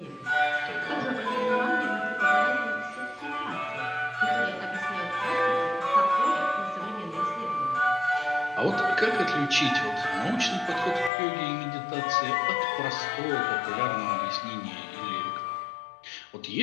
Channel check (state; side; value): drops out; right; at 11.1 s